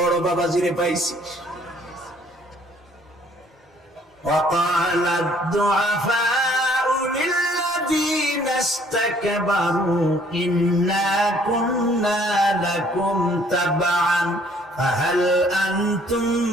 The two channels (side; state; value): both; normal; correlation 0.61